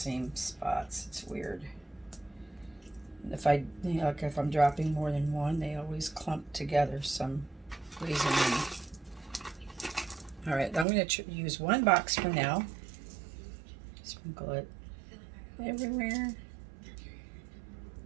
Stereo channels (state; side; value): drops out; left; at 10.9 s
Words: spots. It's weird. If I, like if I'm dropping more than one, they always clump together some reason. All right, I'm going to use one box for now. Sprinkle it everywhere.